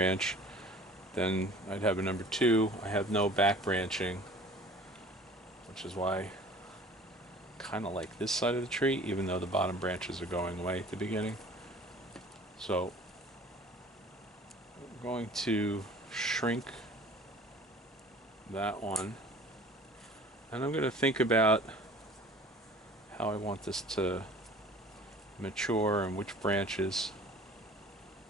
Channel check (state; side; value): normal; both; correlation 0.47